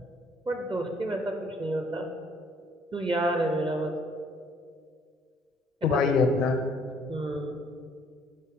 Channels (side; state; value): both; normal; correlation 0.63